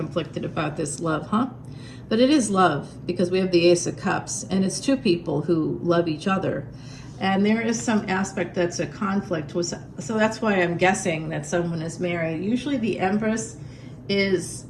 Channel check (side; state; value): both; identical; correlation 1.00